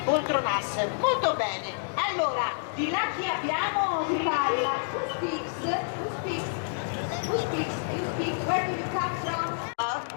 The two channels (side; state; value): right; silent; digital silence